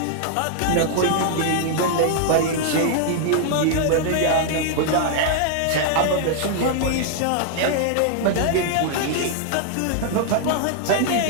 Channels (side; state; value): both; different; correlation 0.00